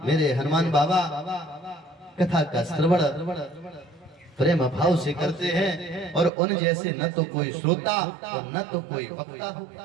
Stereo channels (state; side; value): drops out; left; at 6.3 s